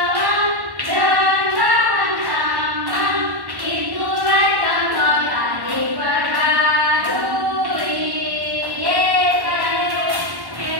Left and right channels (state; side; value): late; left; 1.1 ms